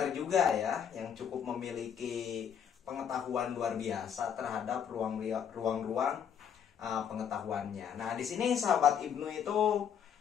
juga ya, yang cukup memiliki pengetahuan luar biasa terhadap ruang-ruang pengetahuannya. Nah, di sini sahabat Ibnu itu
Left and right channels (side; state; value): right; quieter; 8.3 dB